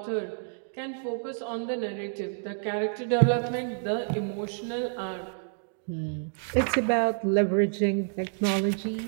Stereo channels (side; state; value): left; silent; digital silence